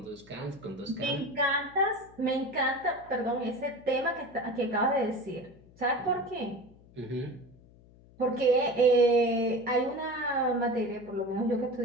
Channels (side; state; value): left; noise; hum, 25 dB below the sound